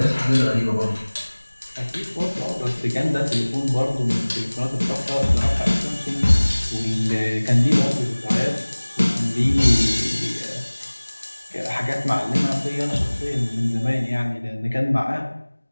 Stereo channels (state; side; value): inverted; both; correlation -1.00